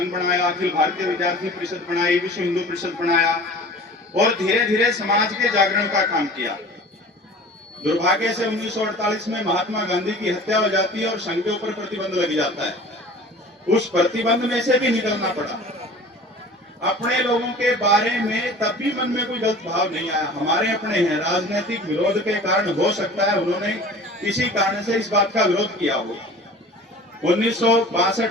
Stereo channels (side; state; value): both; normal; correlation 0.42